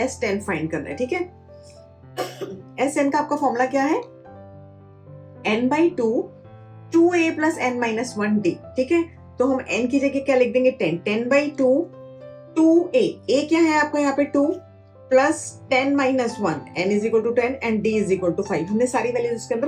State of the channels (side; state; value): both; identical; correlation 1.00